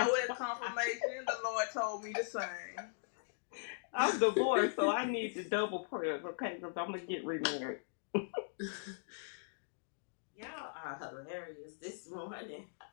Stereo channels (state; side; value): silent; right; digital silence